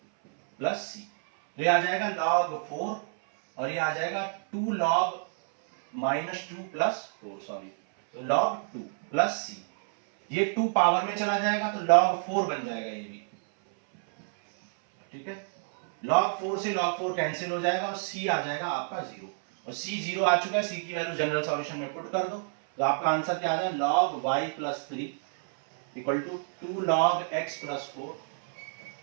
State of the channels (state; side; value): silent; left; 59 dB below the other